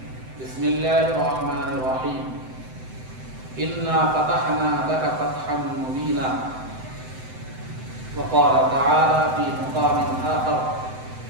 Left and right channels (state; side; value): late; left; 7.8 ms